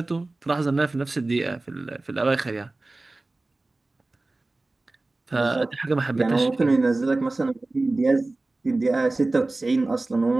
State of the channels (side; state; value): left; quieter; 3.1 dB